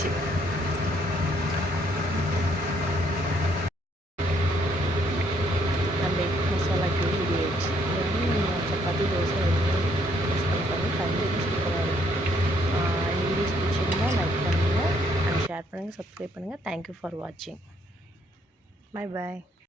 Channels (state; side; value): normal; both; correlation 0.69